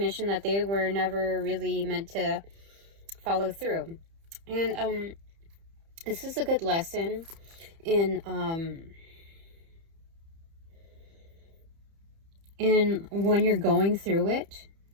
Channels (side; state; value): left; late; 30 ms